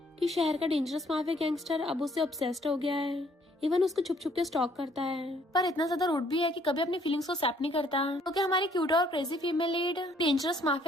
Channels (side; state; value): both; normal; correlation 0.64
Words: शहर का डेंजरस माफिया गैंगस्टर अब उससे ऑब्सेस्ड हो गया है। इवन उसको छुप छुप के स्टॉक करता है, पर इतना ज्यादा रूड भी है कि कभी अपनी फीलिंग्स को एक्सेप्ट नहीं करता। क्योंकि हमारी क्यूट और crazy female lead dangerous